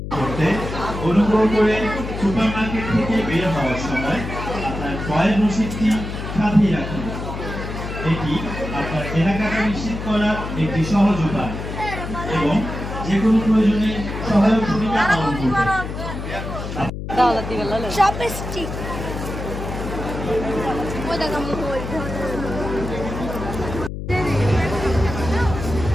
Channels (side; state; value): left; noise; hum, 7 dB below the sound